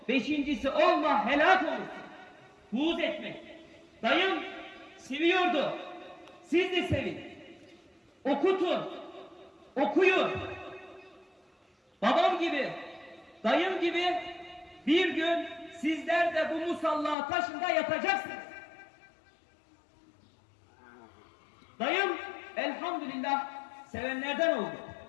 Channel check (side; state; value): right; drops out; at 17.2 s